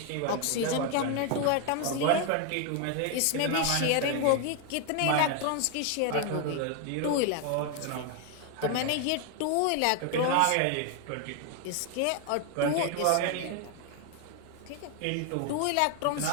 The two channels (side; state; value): both; different; correlation 0.01